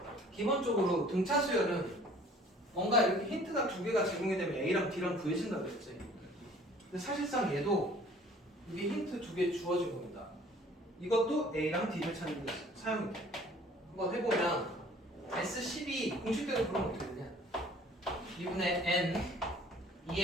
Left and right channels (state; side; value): normal; both; correlation 0.52